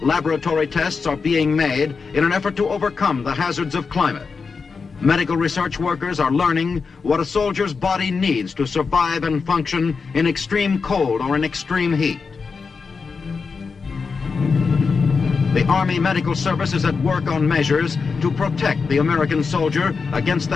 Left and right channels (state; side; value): quieter; right; 5.0 dB